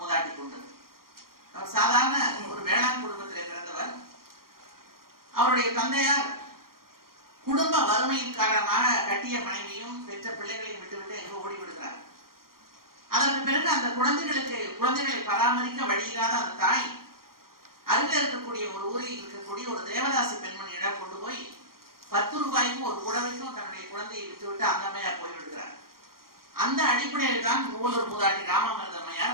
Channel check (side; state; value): left; late; 0.92 ms